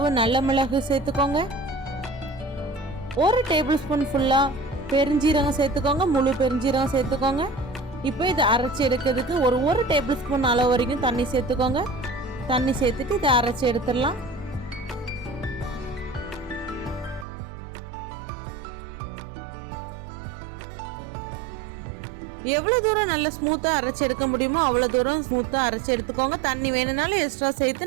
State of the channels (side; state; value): left; drops out; at 17.2 s